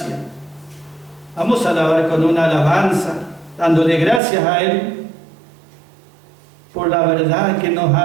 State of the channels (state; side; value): drops out; left; at 4.2 s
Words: Vamos a alabar con una alabanza, dándole gracias a Él por la verdad que nos